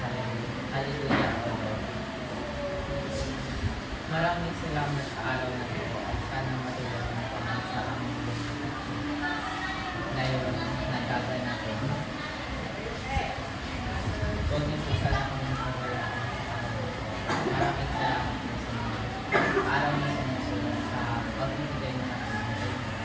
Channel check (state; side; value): identical; both; correlation 1.00